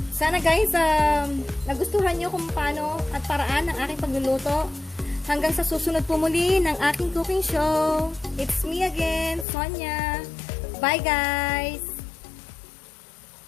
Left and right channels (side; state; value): right; drops out; at 9.5 s